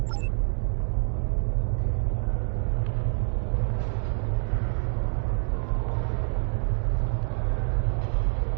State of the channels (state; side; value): silent; left; digital silence